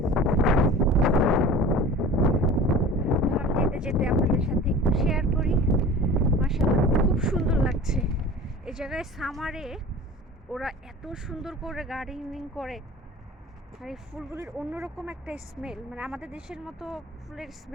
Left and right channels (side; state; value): both; normal; correlation 0.39